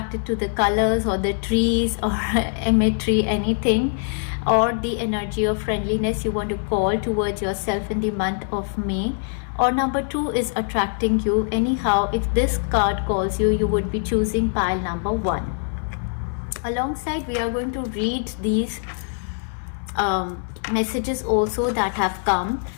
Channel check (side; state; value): right; silent; 61 dB below the other